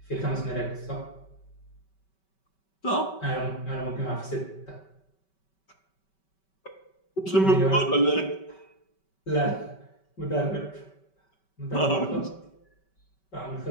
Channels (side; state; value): right; late; 5.2 ms